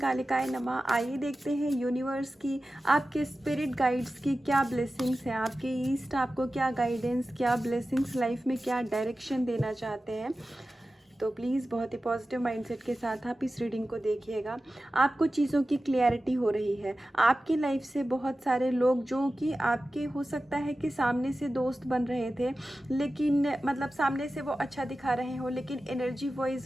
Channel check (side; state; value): both; normal; correlation 0.94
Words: नमः। आइए देखते हैं यूनिवर्स की, आपके स्पिरिट गाइड्स की क्या ब्लेसिंग्स हैं, आपके ईस्ट आपको क्या गाइडेंस, क्या ब्लेसिंग्स लाइफ में क्या डायरेक्शन देना चाहते हैं। तो प्लीज़ बहुत ही पॉजिटिव माइंडसेट के साथ आप इस रीडिंग को देखिएगा। आपको चीज़ों की क्लैरिटी हो रही है। आपकी लाइफ से बहुत सारे लोग जो कि आपके हो सकता है कि सामने से दोस्त बन रहे थे, लेकिन मतलब सामने से वो अच्छा दिखा रहे हो, लेकिन एनर्जी वाइज